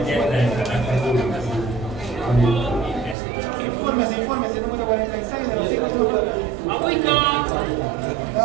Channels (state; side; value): drops out; left; at 3.2 s